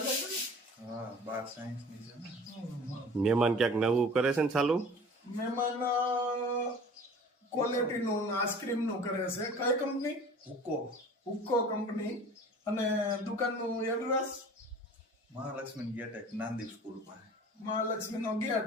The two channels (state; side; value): normal; both; correlation 0.44